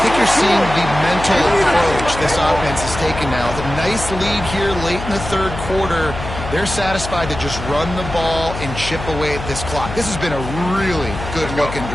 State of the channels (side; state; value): left; noise; hum, 9 dB below the sound